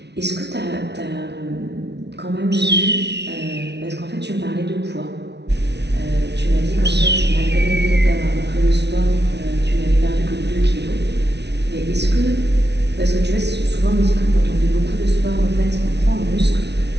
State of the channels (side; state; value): left; late; 0.50 ms